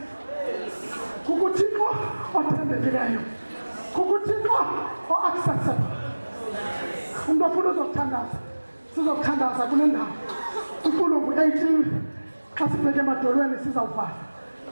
kukuThixo othembekileyo, kukuThixo o-accessible. Umuntu ofuna uzokuthandaza, sizokuthandaza kule ndawo. Intulo ngu-18. Xa sibheke emadolweni sizawuvala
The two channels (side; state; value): both; inverted; correlation -1.00